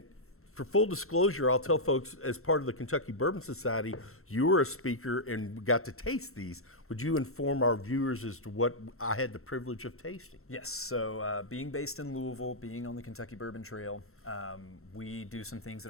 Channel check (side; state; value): right; late; 0.63 ms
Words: for full disclosure, I'll tell folks, as part of the Kentucky Bourbon Society, you were a speaker and got to taste these. Would you inform our viewers as to what I had the privilege of tasting? Yes, so being based in Louisville, being on the Kentucky Bourbon Trail, we do some things